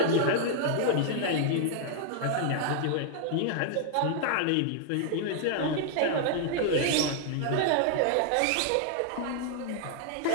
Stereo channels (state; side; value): different; both; correlation -0.01